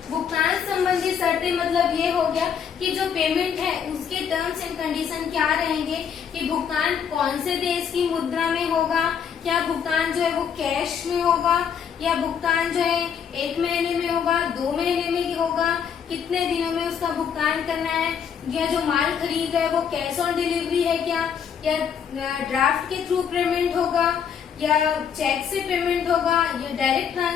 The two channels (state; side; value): quieter; right; 7.6 dB